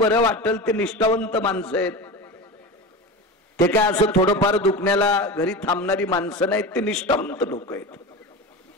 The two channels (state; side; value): normal; both; correlation 0.27